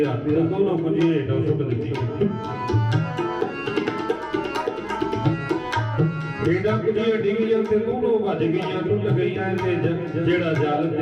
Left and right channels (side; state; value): both; identical; correlation 1.00